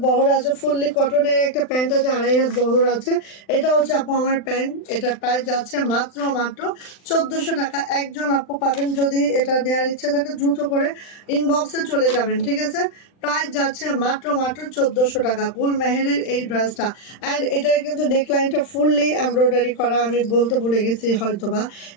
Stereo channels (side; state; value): right; late; 39 ms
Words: বহর আছে, ফুললি কটনের একটা প্যান্ট আছে, 2.5 হাত বহর আছে। এটা হচ্ছে আপু আমার প্যান্ট, এটার প্রাইস যাচ্ছে মাত্র মাত্র 1400 টাকা। একজন আপু পাবেন, যদি এটা নেওয়ার ইচ্ছে থাকে দ্রুত করে ইনবক্সে চলে যাবেন। ঠিক আছে, প্রাইস যাচ্ছে মাত্র মাত্র 1400 টাকা, গুল মেহেরের এই ড্রেসটা। অ্যান্ড এটার কিন্তু নেকলাইনটা ফুললি এমব্রয়ডারি করা, আমি বলতে ভুলে গেছি হয়তোবা,